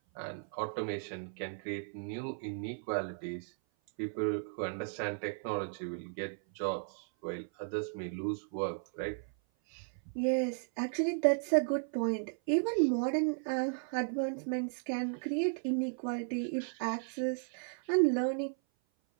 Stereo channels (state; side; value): silent; left; 54 dB below the other